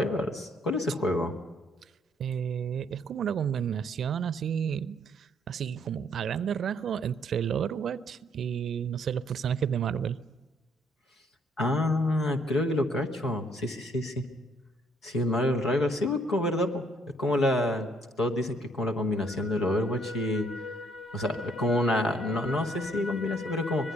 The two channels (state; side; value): normal; both; correlation 0.66